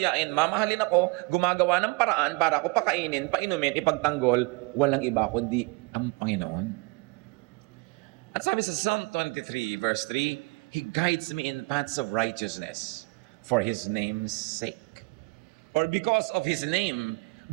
mamahalin ako, gumagawa ng paraan para ako pakainin, painumin, ipagtanggol, walang iba kundi ang Panginoon. At sabi sa Psalm 23 verse 3, He guides me in paths of righteousness for His name's sake. Or because of His name,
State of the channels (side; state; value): left; quieter; 27.2 dB